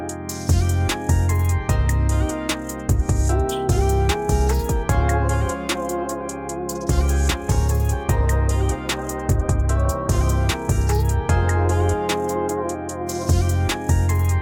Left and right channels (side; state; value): both; identical; correlation 1.00